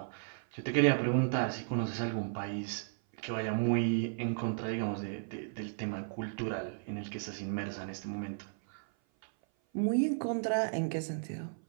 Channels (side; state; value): left; silent; 55 dB below the other